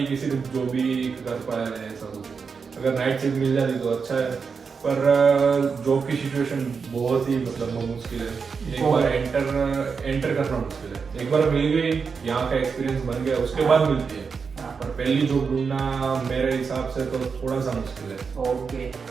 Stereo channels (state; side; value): quieter; left; 5.5 dB